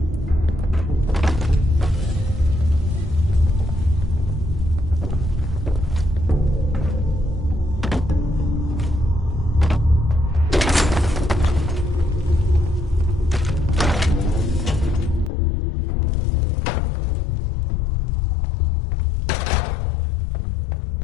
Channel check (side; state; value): right; drops out; at 15.3 s